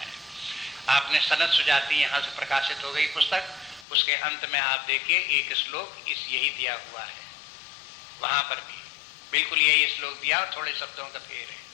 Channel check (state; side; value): drops out; right; at 3.9 s